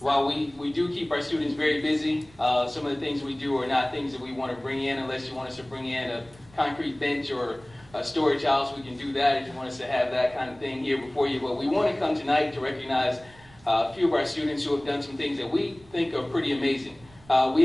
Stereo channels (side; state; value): right; noise; rumble, 25 dB below the sound